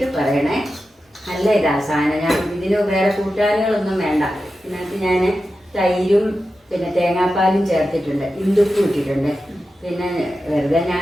പറയണേ. നല്ല ഇതാ സാധനം. ഞാൻ ഇതിന് വേറെ കൂട്ടാനുകളൊന്നും വേണ്ട. ഇതിനകത്ത് ഞാൻ തൈരും പിന്നെ തേങ്ങാപ്പാലും ചേർത്തിട്ടുണ്ട്, ഇന്ദുപ്പും ഇട്ടിട്ടുണ്ട്. പിന്നെ വെറുതെ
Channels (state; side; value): normal; both; correlation 0.92